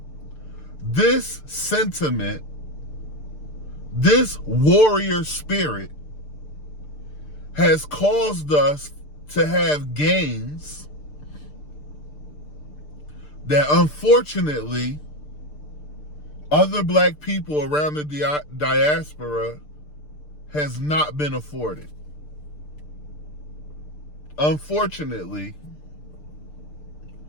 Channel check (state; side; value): late; right; 6.7 ms